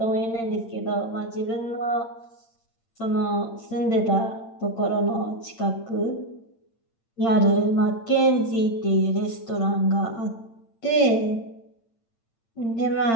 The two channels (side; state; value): right; late; 8.8 ms